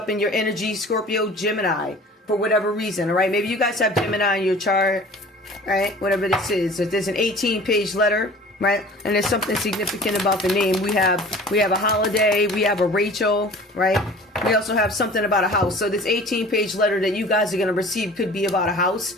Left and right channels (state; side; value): normal; both; correlation 0.44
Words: in your energy, Scorpio, Gemini, for whatever reason, all right? Maybe you guys have Gemini in your chart, all right? Whatever this is. If there's an 18-page letter, right, and there's something significant about the name. We have a holiday, we have a Rachel, right? We also have something about a house. So this 18-page letter that you guys are going to receive could be about a